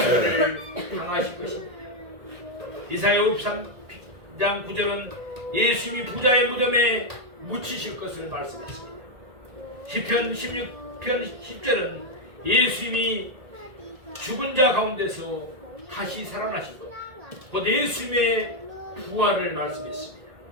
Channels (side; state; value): left; late; 1.8 ms